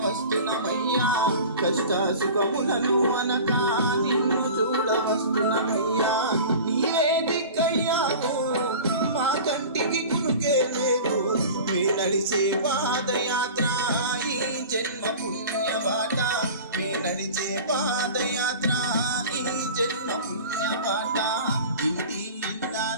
వస్తున్నమయ్యా, కష్ట సుఖములను అనగా నిన్ను చూడ వస్తున్నమయ్యా. నీవే దిక్కయ్యావు మా కంటికి కునుకే లేదు, మీ నడిచే పాదయాత్ర ఈ జన్మ పుణ్యబాట, మీ నడిచే పాదయాత్ర ఈ జన్మ పుణ్యబాట. ఇంటి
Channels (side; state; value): both; inverted; correlation -0.38